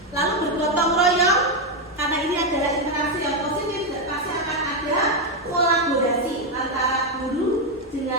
Lalu bergotong royong, karena ini adalah interaksi yang positif dan pasti akan ada kolaborasi antara guru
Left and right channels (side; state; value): both; normal; correlation 0.05